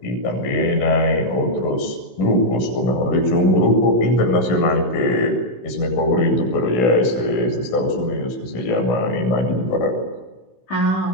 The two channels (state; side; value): late; right; 16 ms